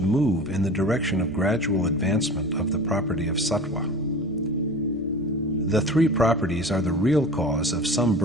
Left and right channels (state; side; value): normal; both; correlation 0.36